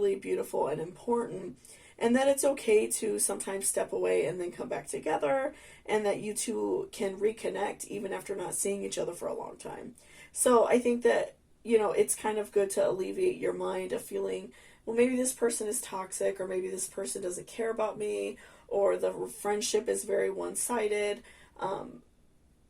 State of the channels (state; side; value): identical; both; correlation 1.00